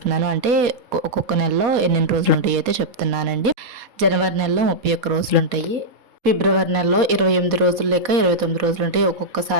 అంటే ఒక్కొక్క నెలలో ఎన్ని రోజులు ఉంటాయి అయితే చెప్తున్నానండి. జనవరి నెలలో 31 రోజులు ఉంటాయి. ఫిబ్రవరి నెలలో 28 రోజులు లేక 29 రోజులు ఉంటాయి.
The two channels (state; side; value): late; left; 4.2 ms